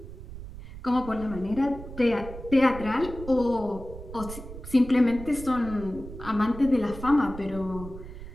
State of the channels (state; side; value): noise; right; rumble, 12 dB below the sound